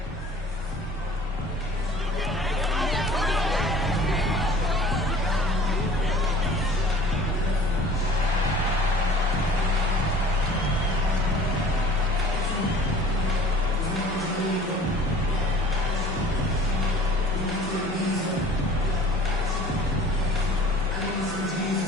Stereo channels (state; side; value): normal; both; correlation 0.47